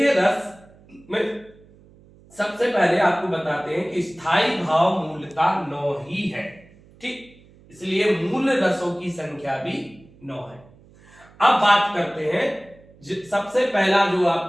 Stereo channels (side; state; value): right; noise; hum, 26 dB below the sound